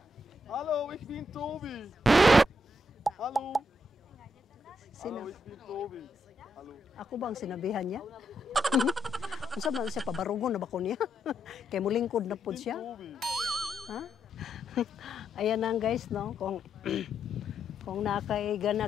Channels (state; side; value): normal; both; correlation 0.79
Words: Hallo, ich bin Tobi. Hallo. Sino? Hallo, ich bin Tobi. Hallo. Ako bang sinabihan niya? Kung saan man siya, pabarugon na ba ko niya? Kaya mulingkod na po siya. Ha? Ayan lang guys, no? Kung